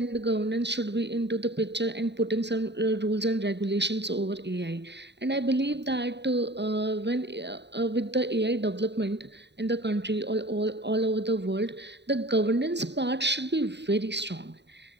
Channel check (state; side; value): late; left; 0.50 ms